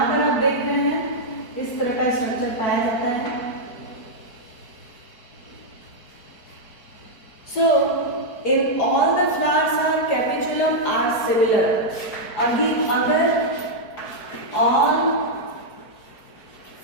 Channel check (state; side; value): late; right; 4.5 ms